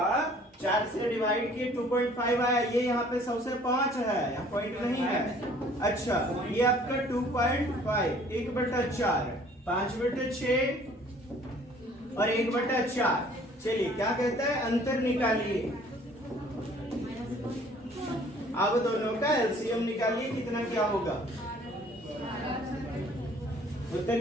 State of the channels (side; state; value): both; normal; correlation 0.55